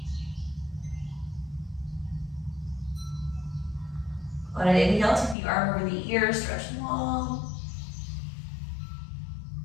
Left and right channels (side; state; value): right; drops out; at 5.4 s